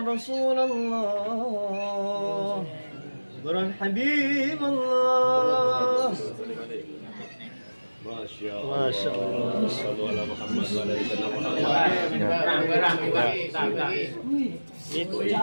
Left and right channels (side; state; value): both; inverted; correlation -1.00